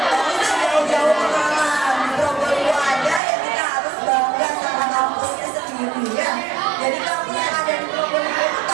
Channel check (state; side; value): drops out; left; at 3.2 s